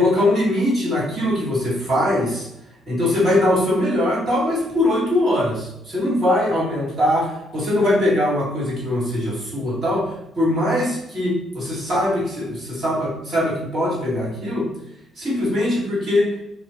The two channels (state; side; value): normal; both; correlation 0.72